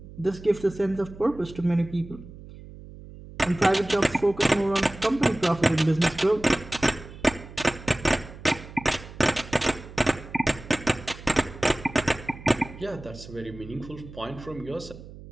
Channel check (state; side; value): noise; right; hum, 16 dB below the sound